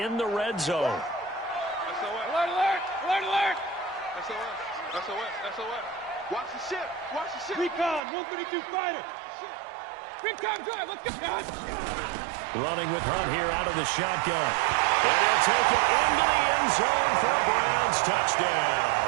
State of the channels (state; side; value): drops out; left; at 8.0 s